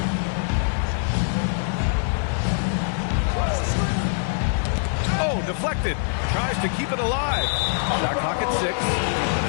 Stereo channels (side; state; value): right; silent; 63 dB below the other